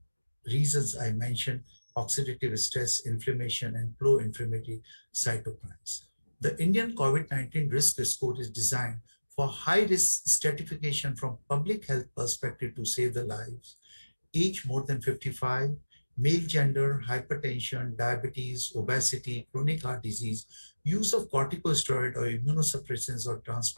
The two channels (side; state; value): both; inverted; correlation -1.00